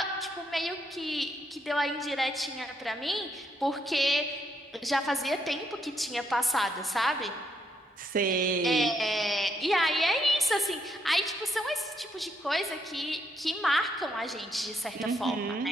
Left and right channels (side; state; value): both; normal; correlation 0.75